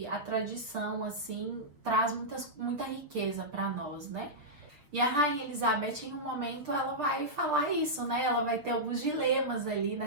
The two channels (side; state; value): left; late; 6.9 ms